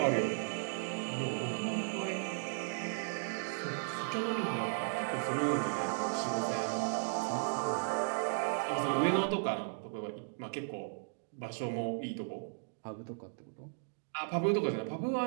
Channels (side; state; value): left; silent; digital silence